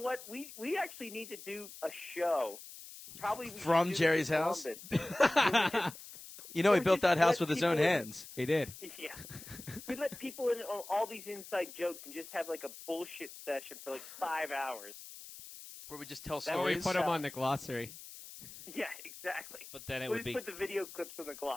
We actually need to do a show. Probably we From should do Jerry's it in house? Columbus. You know, he built that house with his own hands. He did. Yeah. We let people in on all these inside jokes and just have like a bullshit session for like 5 hours. Where we just tell Or stories. we put them on the glossary. Yeah, exactly. But then it We'll would just be. put the video clips on the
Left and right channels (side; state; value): left; noise; hiss, 15 dB below the sound